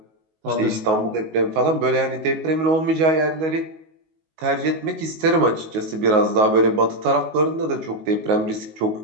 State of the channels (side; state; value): left; late; 19 ms